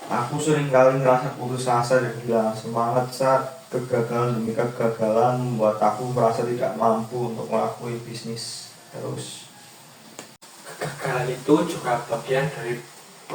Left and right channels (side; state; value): both; identical; correlation 1.00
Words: Aku sering kali ngerasa putus asa dan kehilangan semangat saat kegagalan demi kegagalan membuat aku merasa tidak mampu untuk melakukan bisnis terus. Kegagalan itu juga bagian dari